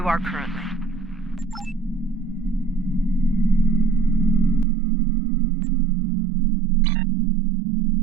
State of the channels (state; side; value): drops out; left; at 4.7 s